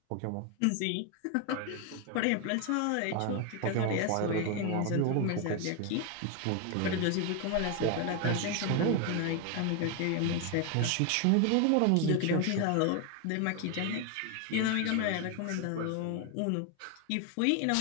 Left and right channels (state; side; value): different; both; correlation 0.01